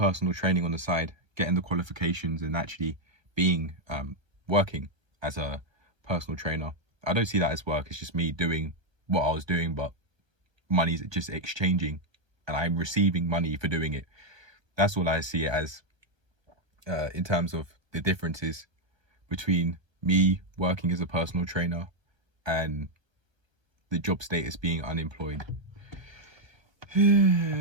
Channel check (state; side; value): late; left; 1.3 ms